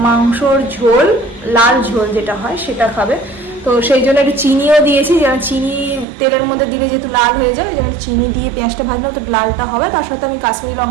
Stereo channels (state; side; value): drops out; left; at 6.1 s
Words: মাংসর ঝোল, লাল ঝোল যেটা হয় সেটা খাবে। তো সেই জন্য একটু চিনিও দিয়েছি, যেন চিনি তেলের মধ্যে দিলে যেহেতু লাল হয়ে যায়, যেন চিনি দিয়ে পেঁয়াজটা ভাজলে তো লালটা হবে। তার সাথে আমি কাশ্মীরি